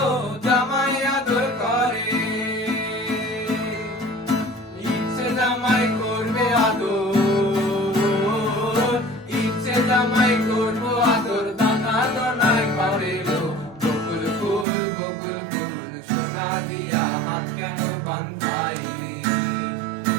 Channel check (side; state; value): left; drops out; at 14.7 s